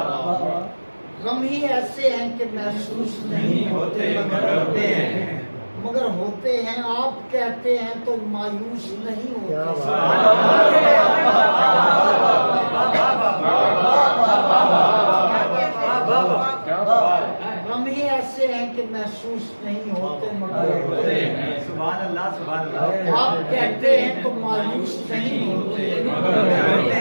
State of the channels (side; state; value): both; inverted; correlation -1.00